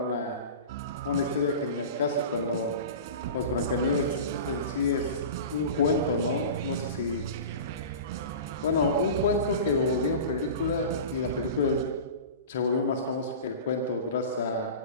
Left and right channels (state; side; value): inverted; both; correlation -0.33